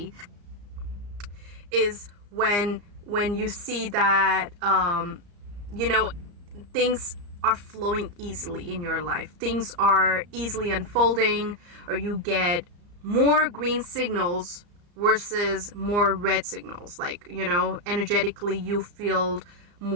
is when you see that things are flowing easily in your life, things are easily unfolding, or you get more green signals versus more red signals. Like, energetically you feel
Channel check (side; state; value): left; late; 34 ms